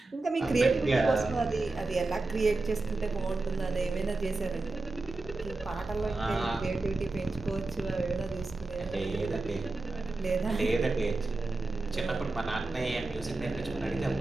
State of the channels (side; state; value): left; quieter; 3.3 dB